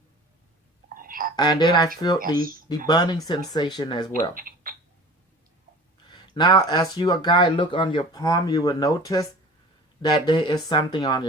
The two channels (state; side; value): normal; both; correlation 0.41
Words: And then I feel Yes. the burning sensation as well. Now, as you a guy look on your palm, you will notice that there is something on